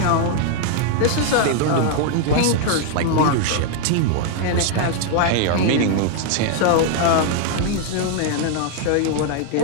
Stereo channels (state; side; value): different; both; correlation 0.00